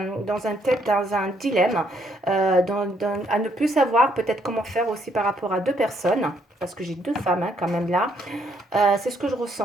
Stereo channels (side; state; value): both; normal; correlation 0.71